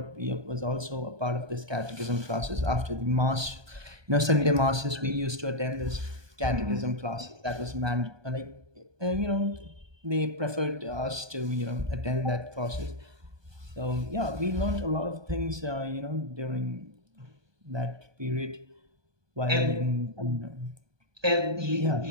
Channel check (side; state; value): left; late; 1.2 ms